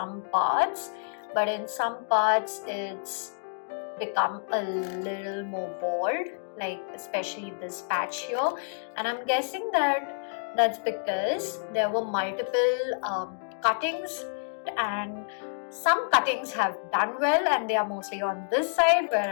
parts, but in some parts it's become a little more bald, like especially this patch here, and I'm guessing that that's because there were multiple cuttings, and some cuttings have done well and they are mostly on this side,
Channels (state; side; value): silent; right; digital silence